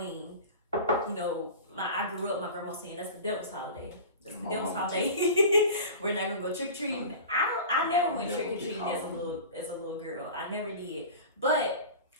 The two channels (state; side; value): inverted; both; correlation -0.35